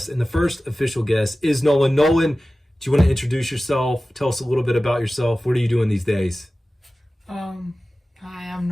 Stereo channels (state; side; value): normal; both; correlation 0.96